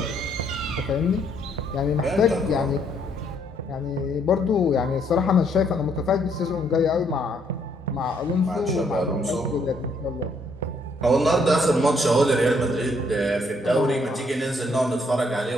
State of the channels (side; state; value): both; normal; correlation 0.69